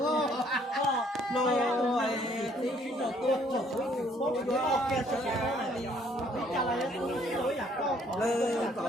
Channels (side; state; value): both; normal; correlation 0.63